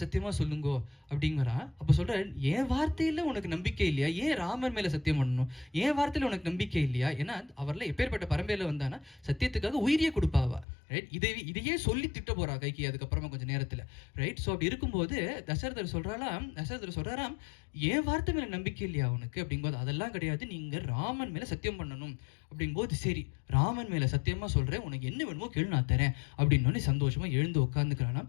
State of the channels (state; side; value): drops out; right; at 10.7 s